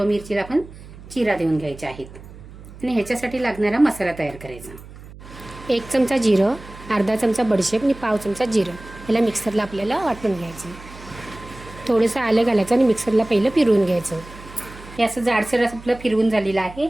मिरचीला आपण चिरा देऊन घ्यायच्या आहेत आणि ह्याच्यासाठी लागणारा मसाला तयार करायचा. 1 चमचा जिरं, अर्धा चमचा बडीशेप आणि पाव चमचा जिरं याला मिक्सरला आपल्याला वाटून घ्यायचं. थोडंसं आलं घालायचं आणि मिक्सरला पहिलं फिरवून घ्यायचं. हे असं जाडसर आपलं फिरवून झालेलं आहे.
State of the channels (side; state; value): right; noise; hum, 17 dB below the sound